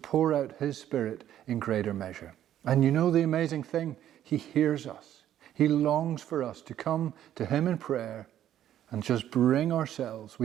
out His Spirit in greater measure. And you know the amazing thing? He hears us. He longs for us to come to Him in prayer and just bring ourselves.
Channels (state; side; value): quieter; left; 11.4 dB